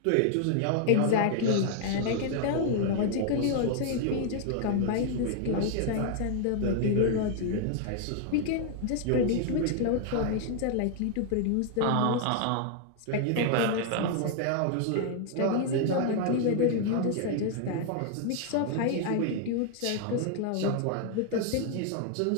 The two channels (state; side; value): different; both; correlation 0.00